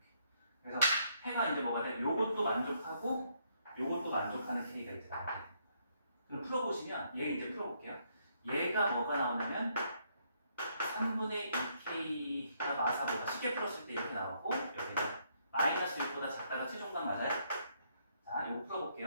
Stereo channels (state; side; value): inverted; both; correlation -0.72